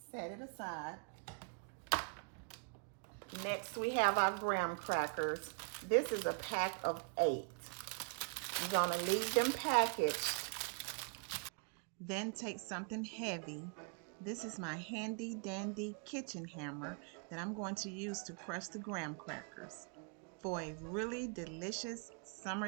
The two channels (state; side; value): quieter; left; 37.0 dB